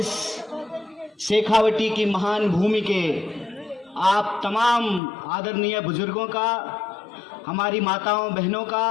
शेखावटी की महान भूमि के आप तमाम आदरणीय बुजुर्गों का, हमारी माताओं बहनों का,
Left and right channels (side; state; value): right; drops out; at 5.0 s